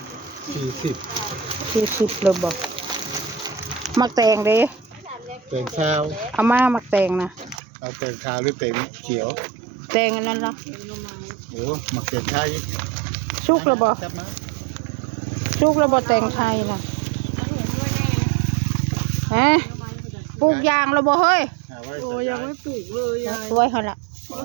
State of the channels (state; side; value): drops out; left; at 7.6 s